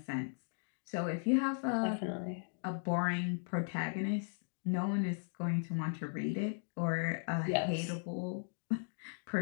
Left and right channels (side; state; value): right; silent; digital silence